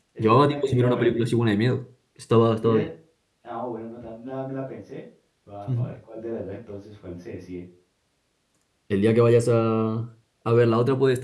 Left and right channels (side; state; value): both; identical; correlation 1.00